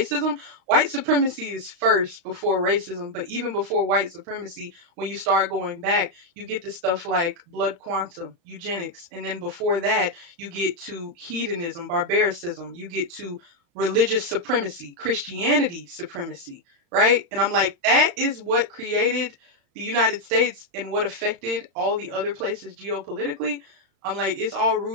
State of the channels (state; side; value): late; left; 35 ms